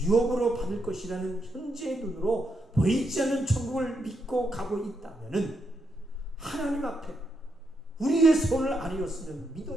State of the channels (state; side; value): normal; both; correlation 0.81